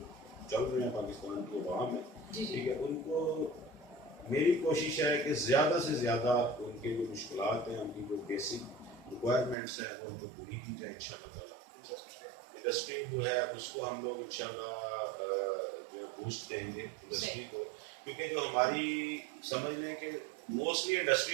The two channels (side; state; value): left; drops out; at 9.6 s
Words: چل رہے ہیں پاکستان کی عوام ہے ٹھیک ہے, ان کو میری کوشش ہے کہ زیادہ سے زیادہ ان کے جو مشکلات ہیں, ان کی جو بیسک ریکوائرمنٹس ہیں وہ ان کو پوری کی جائے انشاءاللہ تعالیٰ. انڈسٹری جو ہے اس کو ہم لوگ انشاءاللہ جو ہے بوسٹ دیں گے انڈسٹری کو, کیونکہ جو ہماری سمجھ لیں کہ موسٹلی